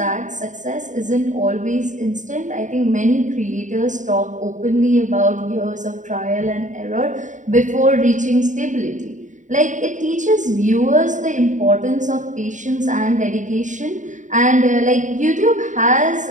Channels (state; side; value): late; left; 0.36 ms